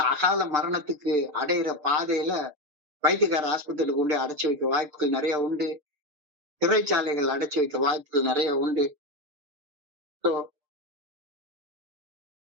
அகால மரணத்துக்கு அடையிற பாதையில வைத்தியக்கார ஆஸ்பத்திரிக்கு கொண்டு அடைச்சு வைக்க வாய்ப்புகள் நிறைய உண்டு. சிறைச்சாலைகள் அடைச்சு வைக்க வாய்ப்புகள் நிறைய உண்டு. ஸோ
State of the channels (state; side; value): late; left; 6.7 ms